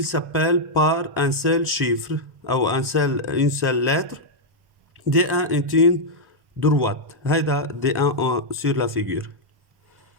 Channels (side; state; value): left; late; 1.1 ms